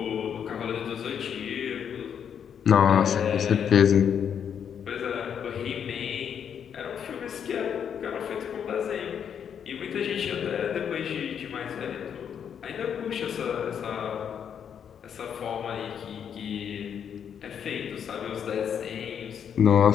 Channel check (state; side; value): quieter; right; 8.1 dB